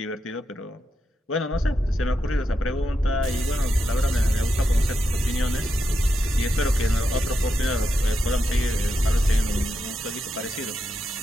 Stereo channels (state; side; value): normal; both; correlation 0.86